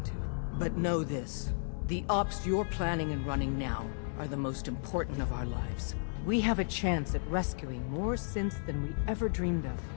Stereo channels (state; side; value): silent; right; digital silence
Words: to. But know this, the ops you're planning and running now are the most important of our lives. We have a chance at rescuing more synths than we ever dreamed of.